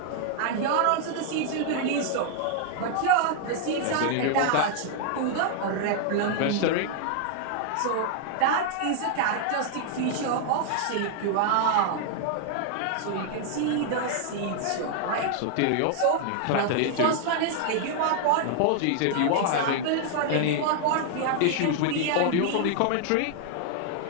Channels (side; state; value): both; different; correlation 0.00